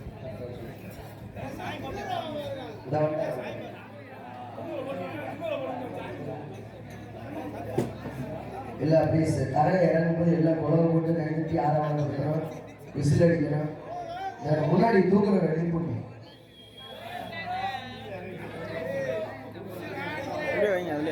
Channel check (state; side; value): identical; both; correlation 1.00